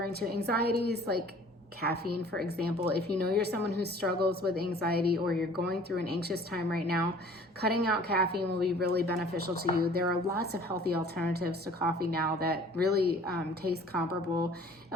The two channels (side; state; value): both; normal; correlation 0.51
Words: to anxieties, like caffeine, for example. If you know you're someone who struggles with anxiety, or you're going through an anxious time right now, cutting out caffeine will be really beneficial to you. There are lots of healthy alternatives to coffee now that really taste comparable